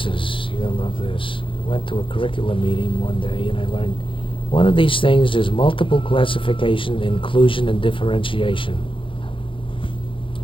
to love this. I went to a curriculum meeting one day and I learned one of these things is multiple classification, inclusion, and differentiation.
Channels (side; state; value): right; late; 0.25 ms